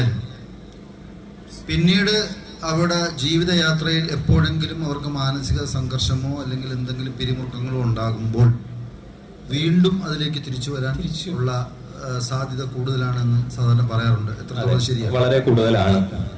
പിന്നീട് അവരുടെ ജീവിതയാത്രയിൽ എപ്പോഴെങ്കിലും അവർക്ക് മാനസിക സംഘർഷമോ അല്ലെങ്കിൽ എന്തെങ്കിലും പിരിമുറുക്കങ്ങളോ ഉണ്ടാകുമ്പോൾ വീണ്ടും അതിലേക്ക് തിരിച്ചു വരാൻ ഉള്ള സാധ്യത കൂടുതലാണെന്ന് സാധാരണ പറയാറുണ്ട്. എത്രത്തോളം ശരിയാണ്? വളരെ കൂടുതലാണ്.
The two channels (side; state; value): both; identical; correlation 1.00